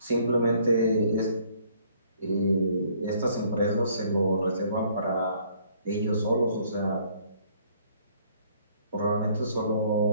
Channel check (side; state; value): both; inverted; correlation -0.62